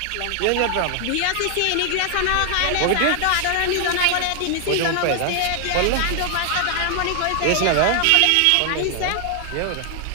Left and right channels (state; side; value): different; both; correlation 0.00